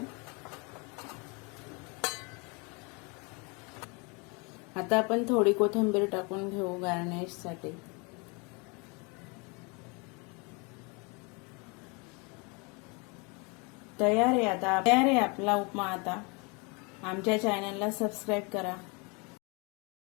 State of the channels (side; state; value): right; quieter; 30.8 dB